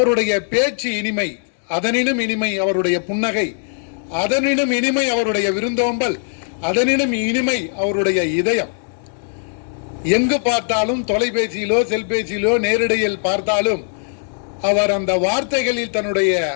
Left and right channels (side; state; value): right; silent; digital silence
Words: பேச்சு இனிமை, அதனினும் இனிமை அவருடைய புன்னகை, அதனினும் இனிமை அவருடைய விருந்தோம்பல், அதனினும் இனிமை அவருடைய இதயம். எங்கு பார்த்தாலும் தொலைபேசியிலோ செல்பேசியிலோ நேரிடையில் பார்த்தாலும் அவர் அந்த வார்த்தைகளில் தன்னுடைய